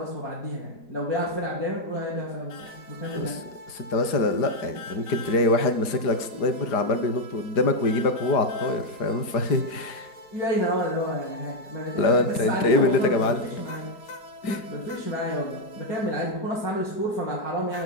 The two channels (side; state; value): right; late; 5.0 ms